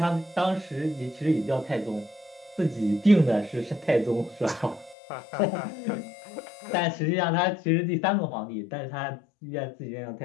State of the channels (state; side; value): drops out; right; at 5.0 s